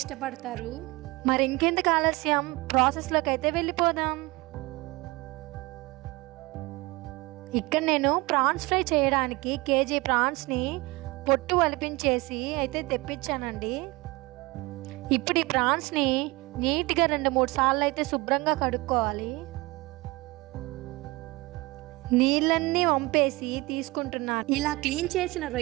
మరి ఇంకెందుకు ఆలస్యం, ప్రాసెస్లోకి అయితే వెళ్ళిపోదాం. ఇక్కడ నేను ప్రాన్స్ ఫ్రై చేయడానికి కేజీ ప్రాన్స్ని పొట్టు వలిపించేసి అయితే తెప్పించానండి. ఇప్పుడు ఈ ప్రాన్స్ని నీట్గా 2-3 సార్లు అయితే శుభ్రంగా కడుక్కోవాలి. నీళ్ళన్నీ వంపేసి తీసుకుంటున్నాను. ఇలా క్లీన్ చేసిన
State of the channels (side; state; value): left; quieter; 22.9 dB